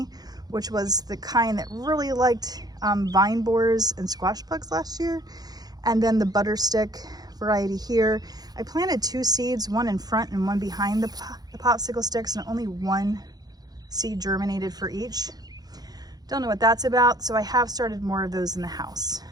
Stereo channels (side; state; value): left; late; 0.19 ms